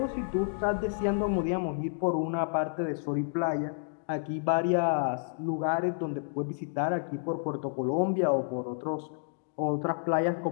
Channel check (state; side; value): silent; right; digital silence